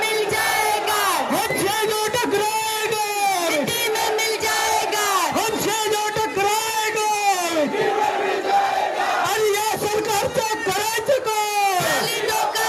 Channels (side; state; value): both; identical; correlation 1.00